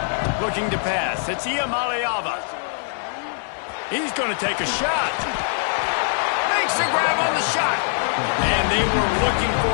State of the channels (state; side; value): silent; right; 64 dB below the other